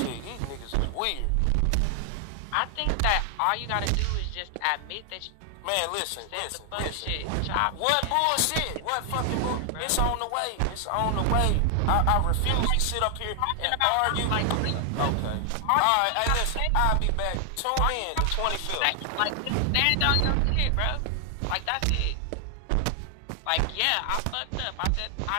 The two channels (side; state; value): both; different; correlation 0.00